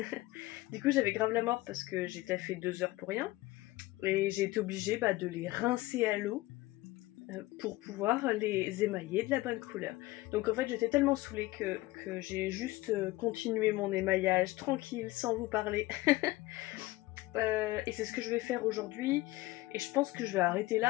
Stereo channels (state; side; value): quieter; right; 19.1 dB